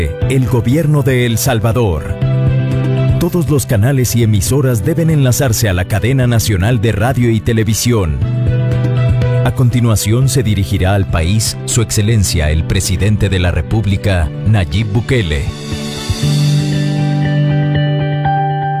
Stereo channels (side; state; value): both; identical; correlation 1.00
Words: el Gobierno de El Salvador. Todos los canales y emisoras deben enlazarse a la cadena nacional de radio y televisión. A continuación se dirigirá al país Su Excelencia el Presidente de la República, Nayib Bukele.